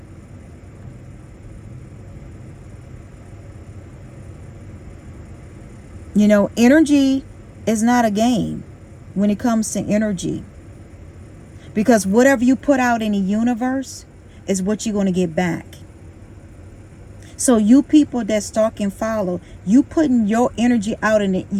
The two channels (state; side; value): identical; both; correlation 1.00